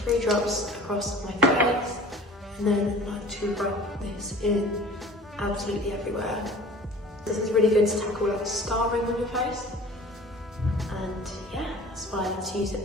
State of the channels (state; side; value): normal; both; correlation 0.45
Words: drops across my face and then like to rub this in absolutely everywhere. This is really good to tackle like scarring on your face, and yeah, that's why I like to use it